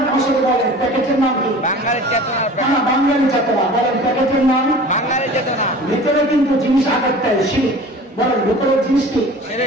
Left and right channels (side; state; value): both; normal; correlation 0.41